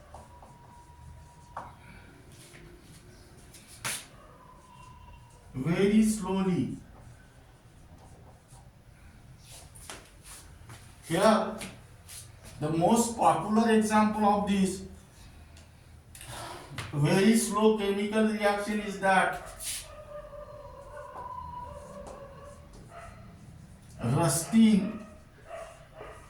very slowly. Here, the most popular example of this very slow chemical reaction is that rusting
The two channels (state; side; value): identical; both; correlation 1.00